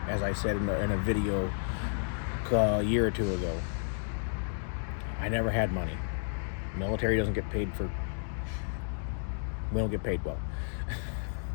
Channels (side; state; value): right; silent; digital silence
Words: as I said in a video a year or two ago, I never had money. Military doesn't get paid for, we don't get paid well.